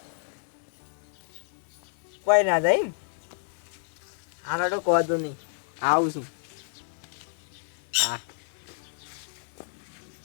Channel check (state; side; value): silent; right; digital silence